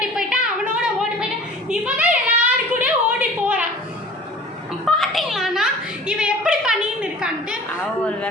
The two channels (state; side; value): normal; both; correlation 0.44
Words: போயிட்டான், அவனோட ஓடி போயிட்டான். இவன் தான் எல்லாரு கூட ஓடி போறான். பாத்தீங்களாண்ணா இவன் எப்படி பண்ணின்னு இருக்கான்ட்டு? அவ ஒரு